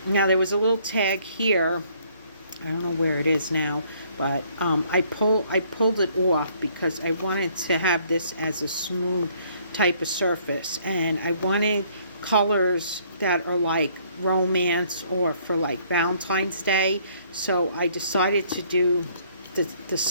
Now there was a little tag here, I don't know where it is now, but I pulled it off because I wanted to have this as a smooth type of surface, and I wanted colors that are like romance or for like Valentine's Day. So I decided to do the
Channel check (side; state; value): both; inverted; correlation -0.63